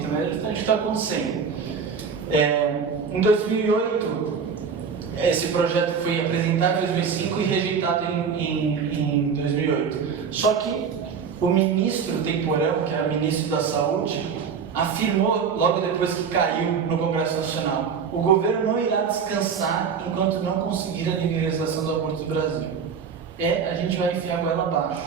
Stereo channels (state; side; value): quieter; left; 6.3 dB